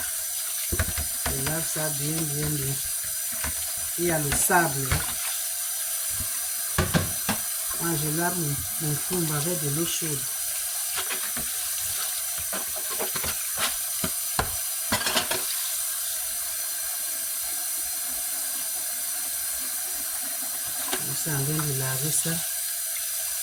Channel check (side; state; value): both; identical; correlation 1.00